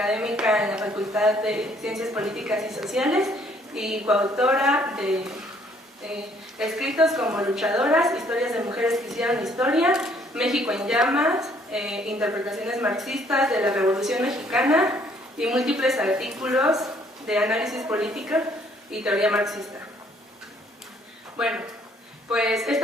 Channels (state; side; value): normal; both; correlation 0.63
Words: en la Facultad de Ciencias Políticas y Sociales y coautora de escritos como Luchadoras, Historias de Mujeres que hicieron historia, México en llamas, Interpretaciones marxistas de la Revolución Mexicana y múltiples artículos de análisis político y teoría marxista. Bueno, pues